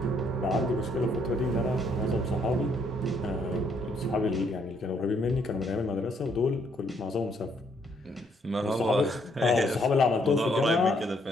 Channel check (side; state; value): both; normal; correlation 0.70